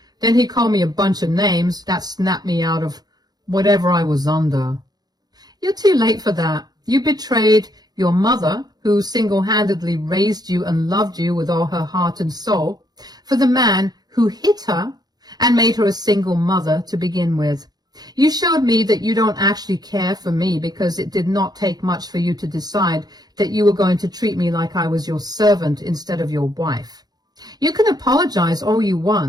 Then he called me a bunch of names that snapped me out of whatever I was under. You're too late for that. You betrayed your mother, who single-handedly raised you and loved you with all her heart and soul, for the man who hit her and made her a single mother to begin with. You showed me that you don't actually care for me because it did not take much for you to decide that you were going to treat me like I was your servant instead of your wife. You can apologize all you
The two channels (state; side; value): late; left; 0.19 ms